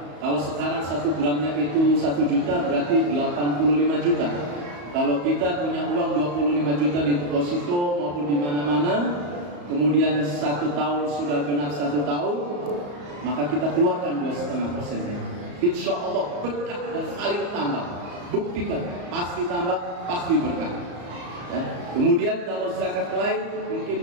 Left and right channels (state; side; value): late; left; 34 ms